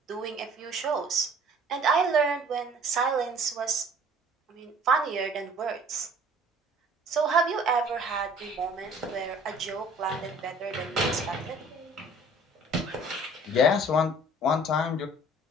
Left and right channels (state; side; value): normal; both; correlation 0.51